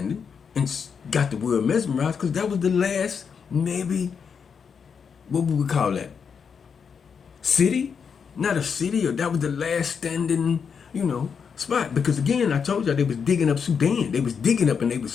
and got the world mesmerized, because that was the last, maybe, what would we call that? City? Not a city, or that was the last standing, spot. Because again, I told y'all they was digging up Sudan. They was digging up and they was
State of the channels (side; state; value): right; quieter; 6.4 dB